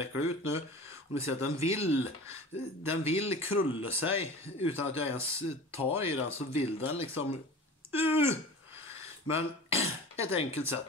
ut nu. Och ni ser att den vill krulla sig utan att jag ens tar i den, så vill den liksom men ett enkelt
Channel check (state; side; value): normal; both; correlation 0.37